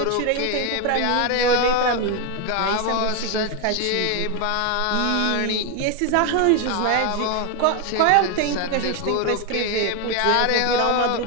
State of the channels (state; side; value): different; both; correlation 0.01